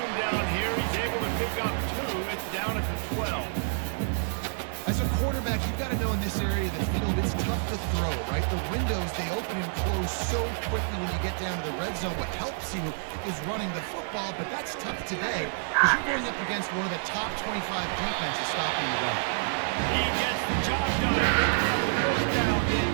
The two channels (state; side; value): silent; left; 59 dB below the other